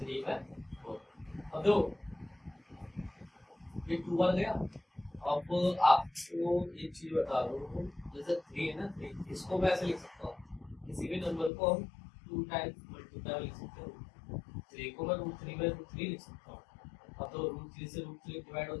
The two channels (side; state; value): right; drops out; at 11.5 s